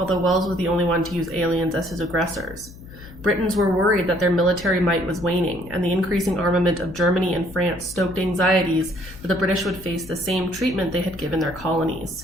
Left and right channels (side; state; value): left; noise; hum, 18 dB below the sound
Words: Wells was the only one to use aliens as his aggressors. Britons were worried that their military might was waning, and the increasing armament of Germany and France stoked anxieties that the British would face the same treatment they had given their